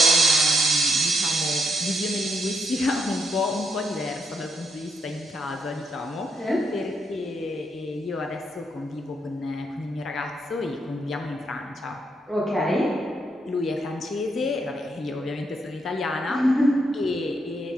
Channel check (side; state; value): both; normal; correlation 0.77